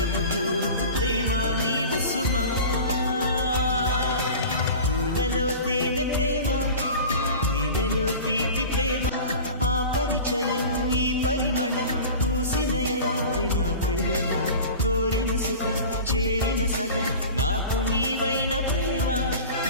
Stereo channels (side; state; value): both; inverted; correlation -0.36